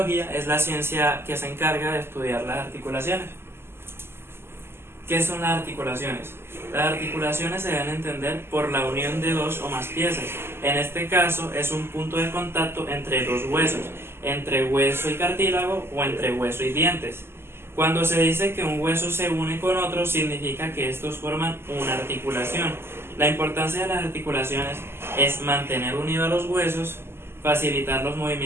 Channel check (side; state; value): left; late; 0.12 ms